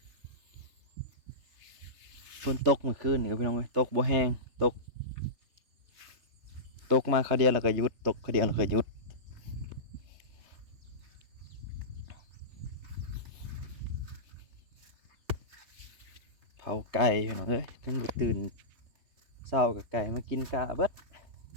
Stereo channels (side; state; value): left; late; 3.3 ms